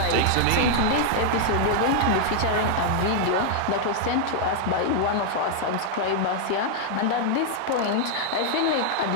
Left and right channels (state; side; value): different; both; correlation -0.01